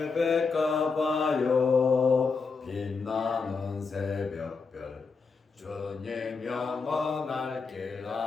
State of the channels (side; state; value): right; quieter; 4.8 dB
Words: 백가봐요 빛나는 새벽별 주님 영원할 길